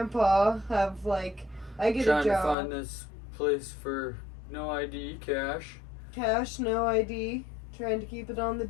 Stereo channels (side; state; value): right; drops out; at 2.6 s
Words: I get a job. Trying to find this place for no ID, cash. Cash, no ID. Trying to keep it on the